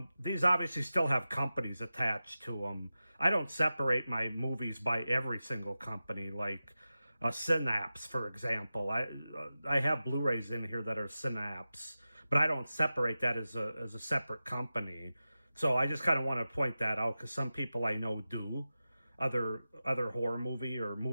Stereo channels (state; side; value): inverted; both; correlation -0.94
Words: these obviously still have companies attached to them. I don't separate my movies by every single company, like Synapse, for example. I have Blu-rays in here that are Synapse, but I don't separate that as a separate company. So I just kind of want to point that out because some people I know do, other horror movie or